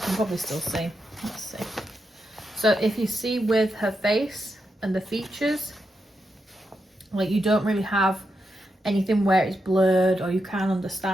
probably still see. Let's see. So if you see with her face and the features, like, you don't really have anything where it's blurred, or you can't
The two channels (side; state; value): both; normal; correlation 0.85